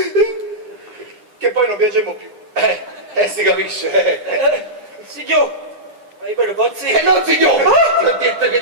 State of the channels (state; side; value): late; left; 9.9 ms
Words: Che poi non piacevamo più. Si capisce. Signor, ma io per pozzi? Non signore, ti ho detto che